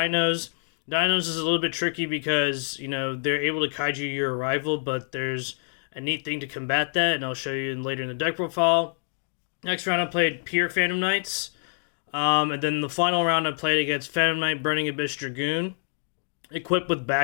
Dinos is a little bit tricky because, you know, they're able to kaiju your Arrival, but there's a neat thing to combat that, and I'll show you later in the deck profile. Next round I played Pure Phantom Knights, and then the final round I played against Phantom Knight Burning Abyss Dragoon, equipped with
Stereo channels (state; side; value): silent; right; digital silence